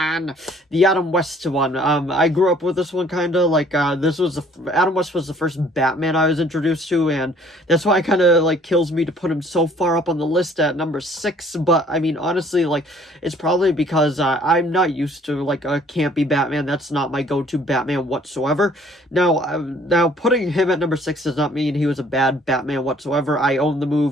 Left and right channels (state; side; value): normal; both; correlation 0.58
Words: the Adam West one. I grew up with this one kind of like Adam West was the first Batman I was introduced to, and that's why it kind of like kills me to put him so far up on the list at number 6. But I mean, honestly, like, it's probably because I'm not used to like a campy Batman. That's not my go-to Batman whatsoever. Now putting him at number 6 does not mean he was a bad Batman whatsoever. I own the movie.